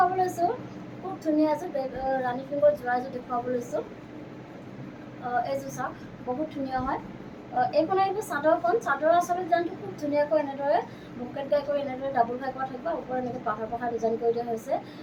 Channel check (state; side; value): identical; both; correlation 1.00